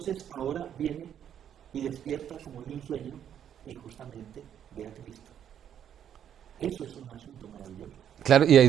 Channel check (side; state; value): left; quieter; 9.4 dB